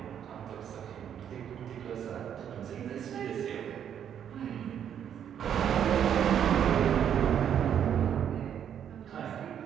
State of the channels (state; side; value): quieter; left; 9.1 dB